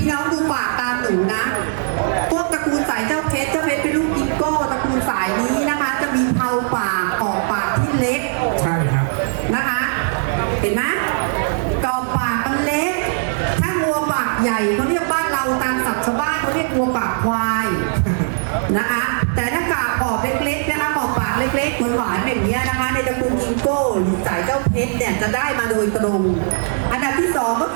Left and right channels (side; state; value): left; silent; 64 dB below the other